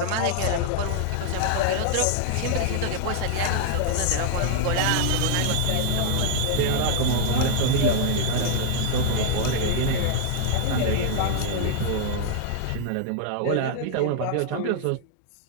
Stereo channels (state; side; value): different; both; correlation -0.01